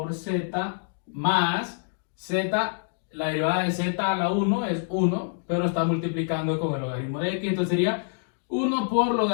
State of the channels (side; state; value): right; silent; digital silence